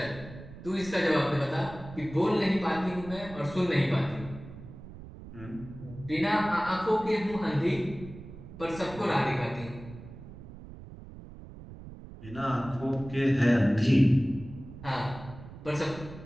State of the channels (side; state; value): right; noise; rumble, 15 dB below the sound